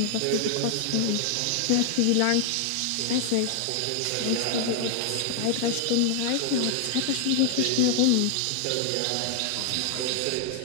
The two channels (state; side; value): different; both; correlation 0.00